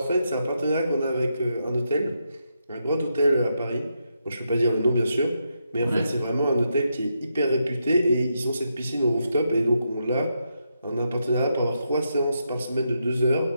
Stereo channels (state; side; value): inverted; both; correlation -0.82